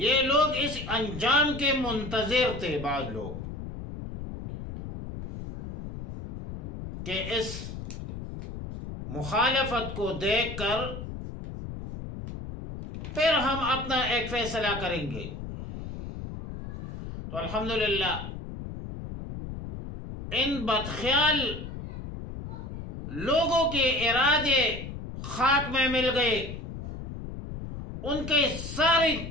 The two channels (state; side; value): noise; left; rumble, 9 dB below the sound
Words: لوگ اس انجام کے منتظر تھے، بعض لوگ، کہ اس مخالفت کو دیکھ کر پھر ہم اپنا ایک فیصلہ کریں گے۔ تو الحمدللہ ان بدخیال لوگوں کے ارادے خاک میں مل گئے، ان کی ساری